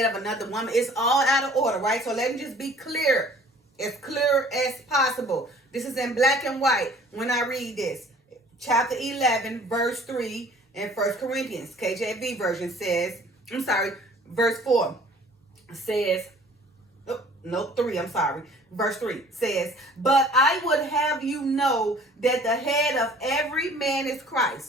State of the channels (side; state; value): both; normal; correlation 0.51